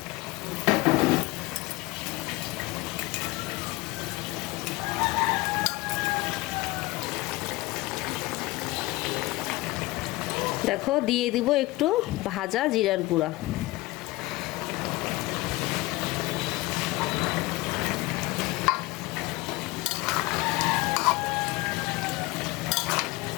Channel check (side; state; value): right; quieter; 20.8 dB